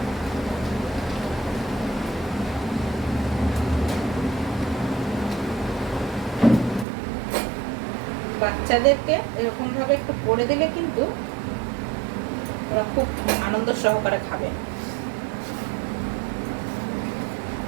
বাচ্চাদেরকে এরকম ভাবে একটু করে দিলে কিন্তু ওরা খুব আনন্দ সহকারে খাবে।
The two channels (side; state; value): left; drops out; at 6.9 s